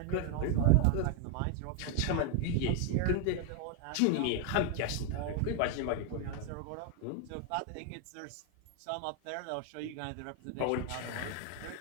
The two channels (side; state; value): both; different; correlation 0.01